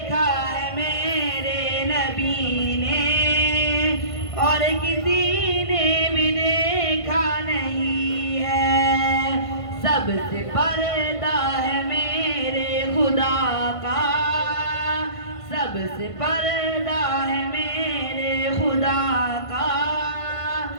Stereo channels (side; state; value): right; late; 1.5 ms